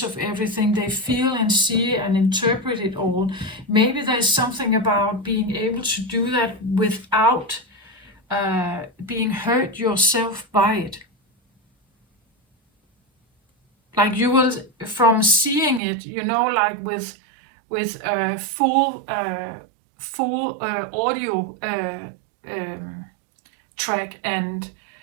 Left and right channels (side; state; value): left; drops out; at 15.8 s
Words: of everything. They feel and see and interpret it all. Maybe there's something about being able to do that without being hurt yourself by it. Like you will, from seeing it, like with full audio track and